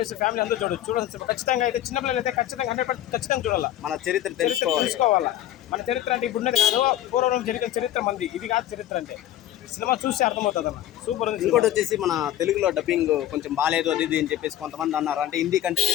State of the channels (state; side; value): quieter; right; 12.6 dB